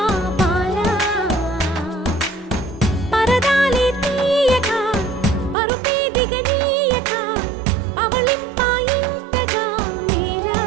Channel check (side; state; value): left; drops out; at 5.6 s